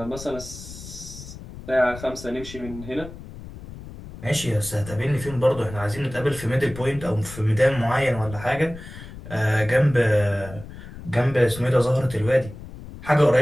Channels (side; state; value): left; noise; rumble, 14 dB below the sound